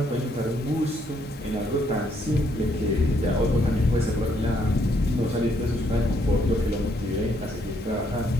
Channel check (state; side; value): noise; right; hiss, 30 dB below the sound